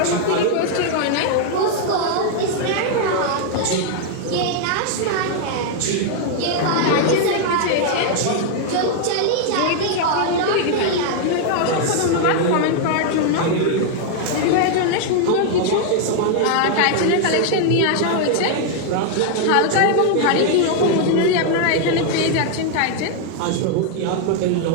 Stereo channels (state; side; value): different; both; correlation 0.00